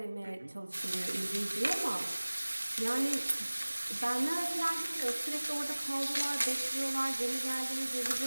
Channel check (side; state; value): both; inverted; correlation -1.00